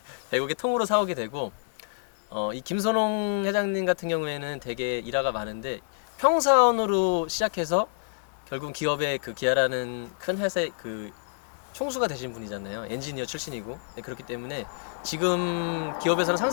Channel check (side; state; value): right; silent; digital silence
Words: 100억에 통으로 사오게 되고, 이 김선홍 회장님 같은 경우에는 되게 일화가 많은데, 평사원으로 시작해서 결국 기업의 그 기아라는 큰 회사의 그 총수가 되신 분이잖아요. 엔지니어 출신이고. 네, 그렇기 때문에 지금 기업에서는